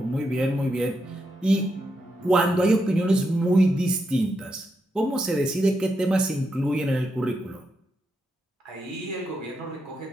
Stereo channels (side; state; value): both; normal; correlation 0.83